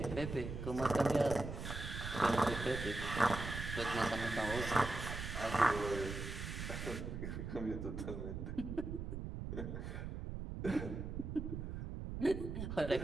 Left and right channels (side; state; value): right; noise; rumble, 5 dB below the sound